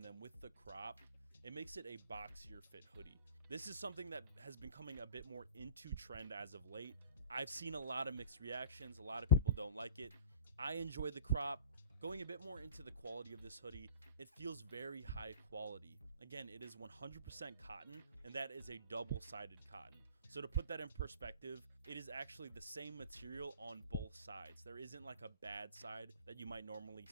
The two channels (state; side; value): inverted; both; correlation -0.43